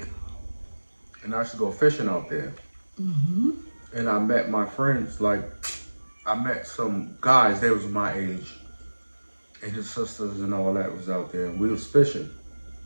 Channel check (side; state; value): both; inverted; correlation -1.00